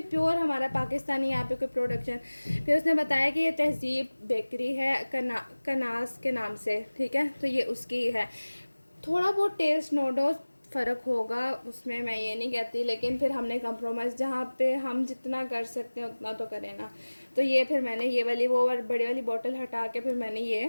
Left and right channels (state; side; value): inverted; both; correlation -1.00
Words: प्योर हमारा पाकिस्तानी यहाँ पे कोई प्रोडक्शन। फिर उसने बताया कि ये तहज़ीब बेकरी है, कनास के नाम से, ठीक है। तो ये उसकी है, थोड़ा बहुत टेस्ट नो डाउट फ़र्क होगा उसमें, मैं ये नहीं कहती, लेकिन फिर हमने कंप्रोमाइज़ जहाँ पे हम जितना कर सकते हैं उतना तो करें ना। तो ये फिर मैंने ये वाली वो बड़ी वाली बोतल हटा के फिर मैंने